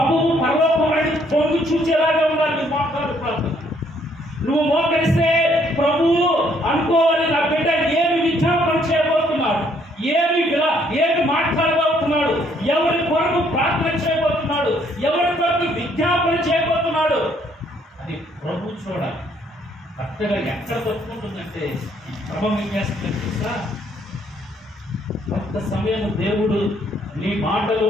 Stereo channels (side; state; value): both; normal; correlation 0.67